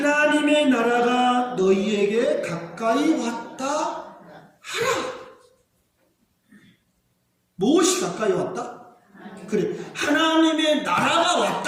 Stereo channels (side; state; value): both; identical; correlation 1.00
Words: 나라가 너희에게 가까이 왔다 하라. 무엇이 가까이 왔다? 그래, 하나님의 나라가